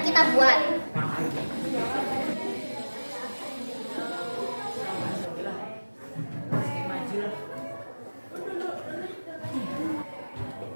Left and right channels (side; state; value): both; inverted; correlation -1.00